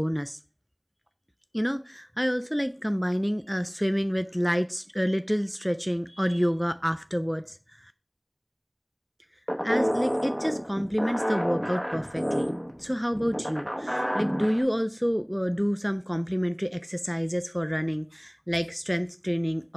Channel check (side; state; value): both; identical; correlation 1.00